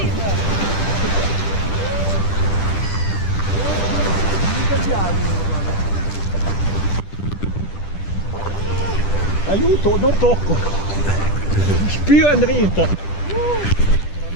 Aiuto, non tocco. Spiro in dritta.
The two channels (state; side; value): late; right; 10 ms